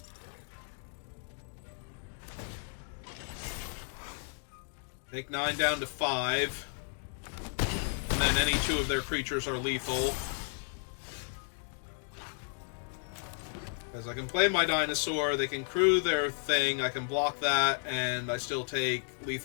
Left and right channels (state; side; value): silent; right; 56 dB below the other